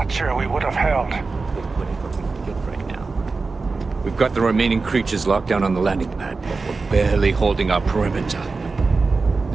sure we would have held. We've got the remaining creatures locked down on the landing pad, but we're barely holding our perimeter.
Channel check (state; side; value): quieter; left; 4.0 dB